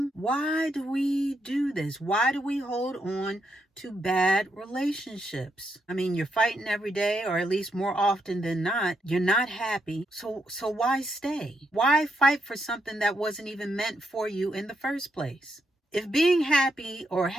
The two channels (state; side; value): normal; both; correlation 0.79